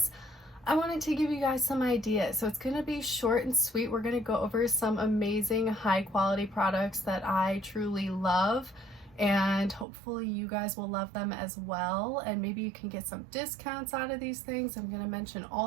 I wanted to give you guys some ideas. So it's going to be short and sweet. We're going to go over some amazing high quality products that I truly love, and hopefully you guys will love them as well, and maybe you can get some discounts out of these things. I'm going to mention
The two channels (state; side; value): drops out; left; at 9.9 s